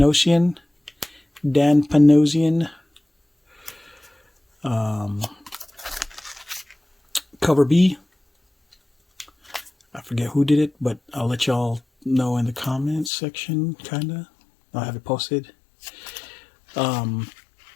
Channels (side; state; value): right; drops out; at 13.1 s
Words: Dan Panosian. Cover B, I forget who did it, but I'll let y'all know in the comments section, kinda. I'll have it posted. The